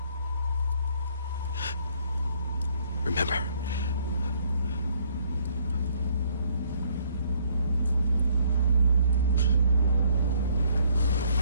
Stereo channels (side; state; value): both; inverted; correlation -0.65